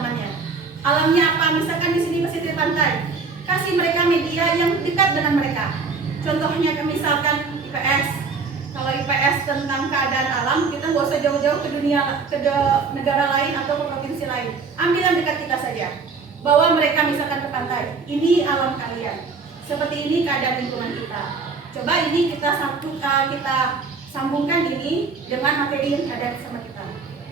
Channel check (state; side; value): quieter; left; 4.7 dB